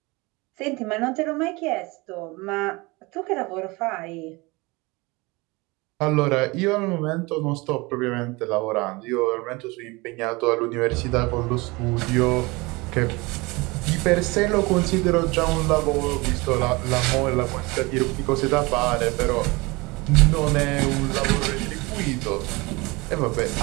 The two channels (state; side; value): quieter; left; 24.6 dB